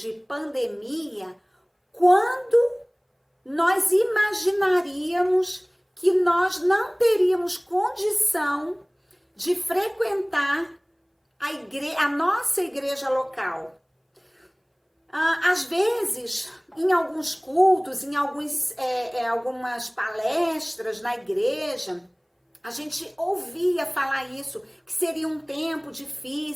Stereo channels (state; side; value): identical; both; correlation 1.00